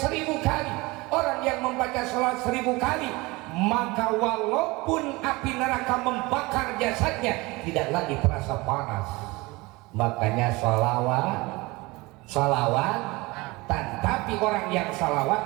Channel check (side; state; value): left; quieter; 23.2 dB